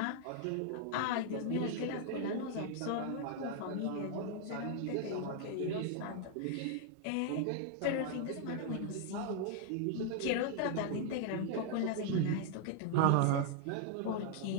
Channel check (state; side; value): different; both; correlation 0.00